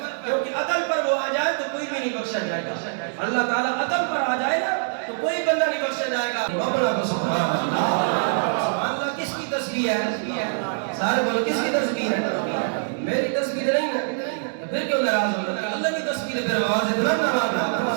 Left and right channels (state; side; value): silent; left; 62 dB below the other